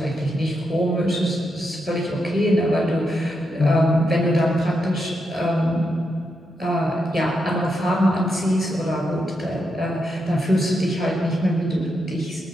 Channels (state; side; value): normal; both; correlation 0.83